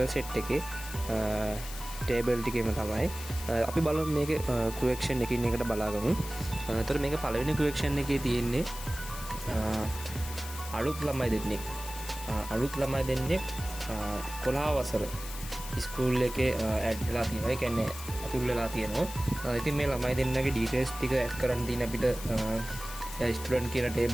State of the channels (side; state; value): left; noise; hiss, 11 dB below the sound